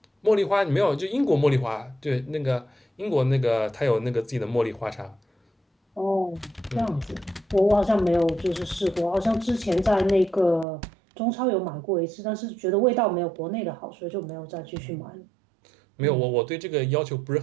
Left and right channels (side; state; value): left; drops out; at 10.7 s